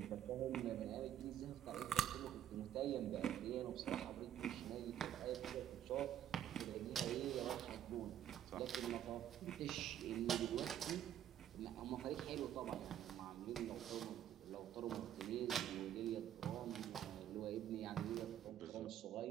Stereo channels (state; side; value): quieter; left; 10.8 dB